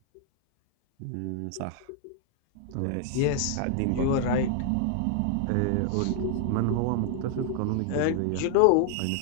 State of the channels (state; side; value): different; both; correlation 0.00